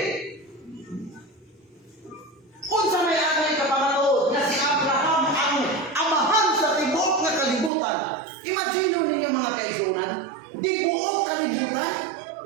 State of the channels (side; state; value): left; drops out; at 7.7 s